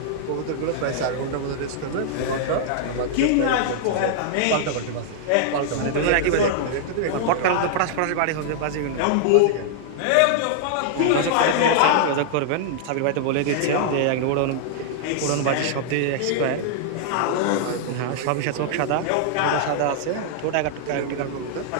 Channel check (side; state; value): both; different; correlation -0.01